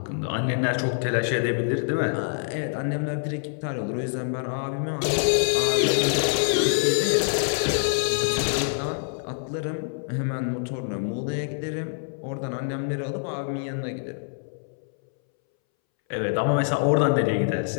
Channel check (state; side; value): silent; right; 61 dB below the other